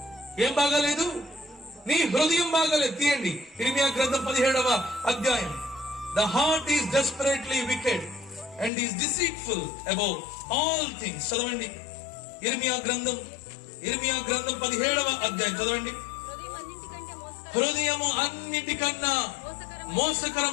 ఏం బాగాలేదు? నీ హృదయం బాగాలేదు. తీయండి ఇర్మియా గ్రంథం 17వ అధ్యాయం. The heart is desperately wicked and is deceitful above all things. చదవండి ఇర్మియా గ్రంథం 17వ అధ్యాయం చదవండి. హృదయము అన్నిటికన్నా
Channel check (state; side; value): drops out; right; at 8.7 s